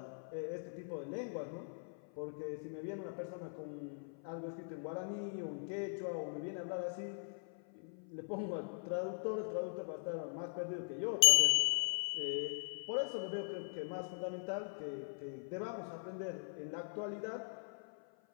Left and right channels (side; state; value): right; silent; 51 dB below the other